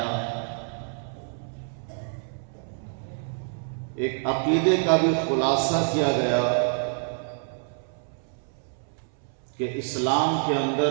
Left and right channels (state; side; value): silent; left; 60 dB below the other